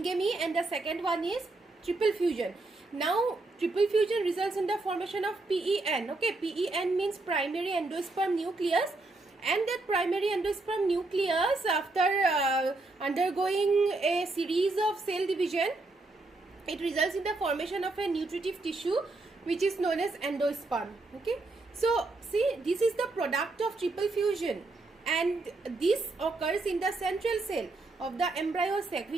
and the second one is triple fusion. Now triple fusion results in the formation of PEN, okay. PEN means primary endosperm nucleus, and that primary endosperm nucleus, after undergoing a series of cell division, it results in the formation of a nutritive tissue which is known as endosperm, okay. So see, this is the product of triple fusion, and this occurs in the central cell of the embryo sac,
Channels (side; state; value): left; quieter; 3.2 dB